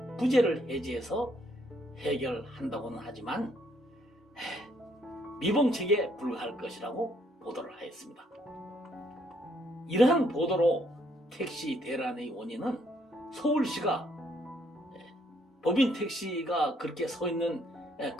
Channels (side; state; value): both; normal; correlation 0.69